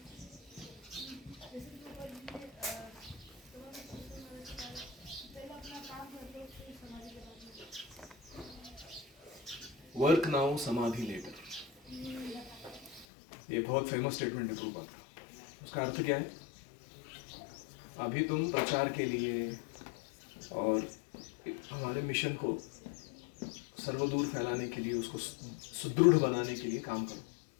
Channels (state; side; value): drops out; right; at 13.1 s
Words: वर्क नाउ समाधि लेटर. ये बहुत फेमस स्टेटमेंट है प्रभुपाद. उसका अर्थ क्या है? अभी तुम प्रचार के लिए और हमारे मिशन को सर्वदूर फैलाने के लिए, उसको सुदृढ़ बनाने के लिए काम करो.